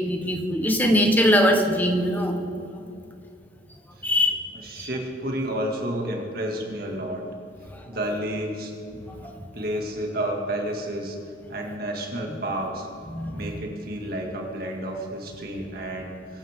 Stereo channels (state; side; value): normal; both; correlation 0.54